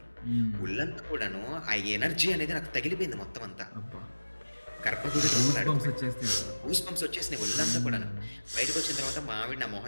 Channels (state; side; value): inverted; both; correlation -1.00